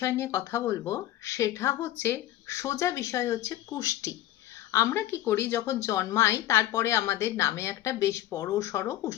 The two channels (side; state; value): right; quieter; 13.9 dB